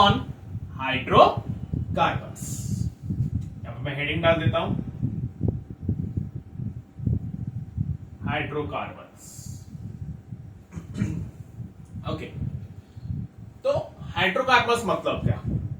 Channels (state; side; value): identical; both; correlation 1.00